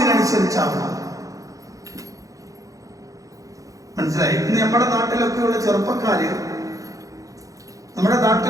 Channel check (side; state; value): left; late; 0.16 ms